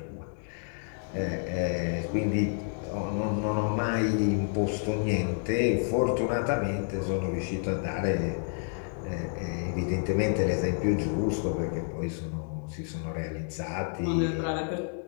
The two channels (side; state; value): right; silent; 58 dB below the other